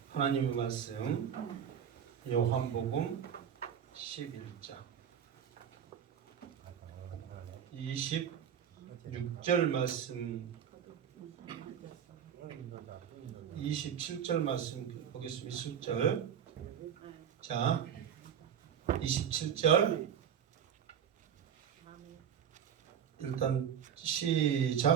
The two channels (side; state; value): left; quieter; 8.6 dB